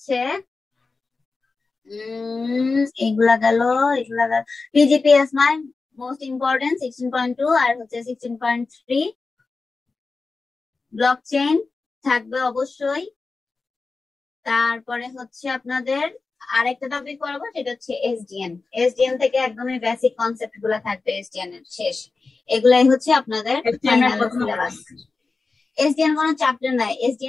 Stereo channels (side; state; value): right; quieter; 4.0 dB